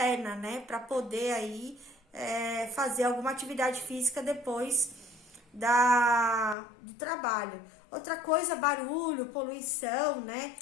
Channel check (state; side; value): drops out; right; at 6.6 s